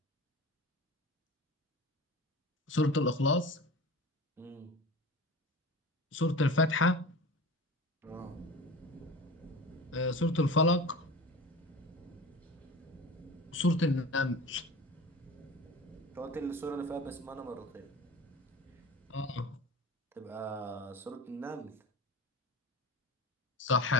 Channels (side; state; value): both; normal; correlation 0.35